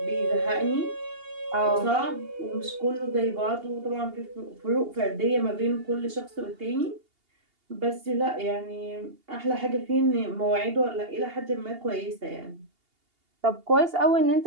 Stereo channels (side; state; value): left; late; 2.8 ms